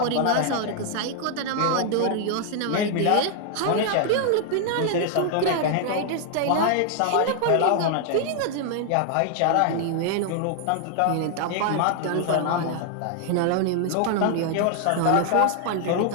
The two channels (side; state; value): both; different; correlation 0.00